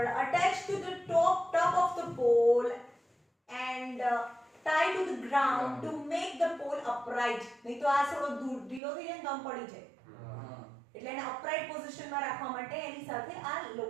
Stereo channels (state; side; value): drops out; left; at 8.8 s